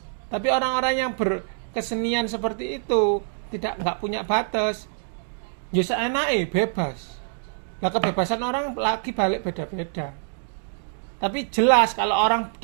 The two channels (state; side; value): silent; left; digital silence